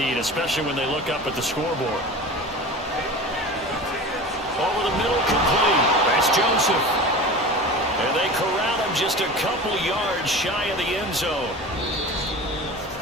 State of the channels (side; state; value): both; normal; correlation 0.34